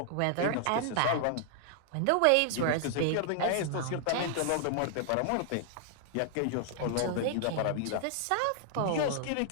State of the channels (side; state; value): both; different; correlation -0.01